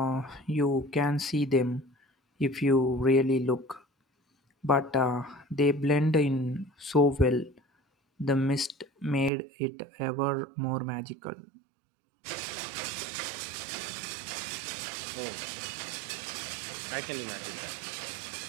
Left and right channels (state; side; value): drops out; left; at 9.3 s